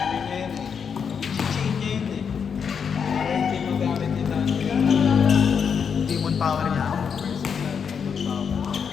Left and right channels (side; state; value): right; quieter; 6.7 dB